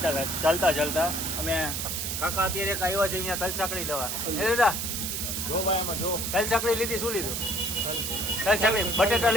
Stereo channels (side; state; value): right; noise; hiss, 2 dB below the sound